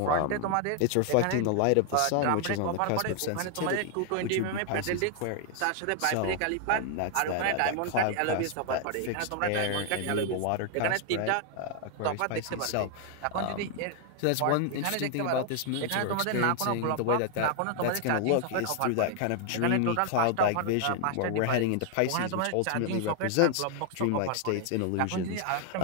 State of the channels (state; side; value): different; both; correlation 0.00